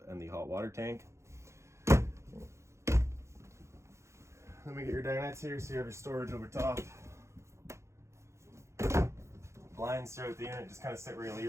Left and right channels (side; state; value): left; late; 0.14 ms